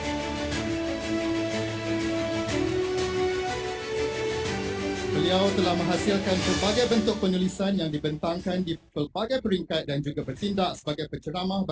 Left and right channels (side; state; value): both; identical; correlation 1.00